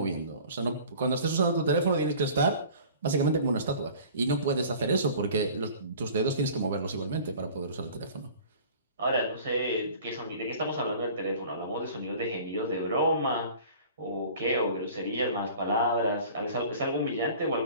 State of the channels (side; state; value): both; inverted; correlation -0.45